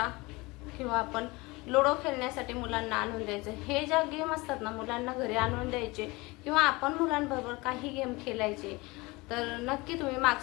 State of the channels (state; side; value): quieter; right; 23.5 dB